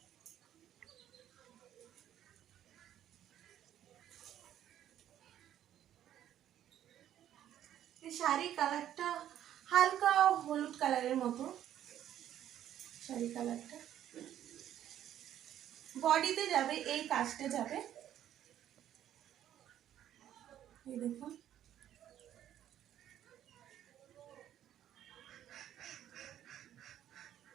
এই শাড়ি কালারটা হালকা হলুদ কালারের মতো, শাড়ি কালারটা। বডিতে যাবে এই কাজটা যাবে, এই দেখুন।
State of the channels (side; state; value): left; quieter; 11.3 dB